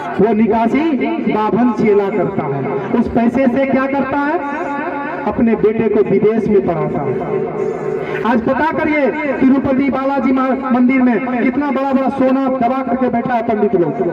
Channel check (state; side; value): identical; both; correlation 1.00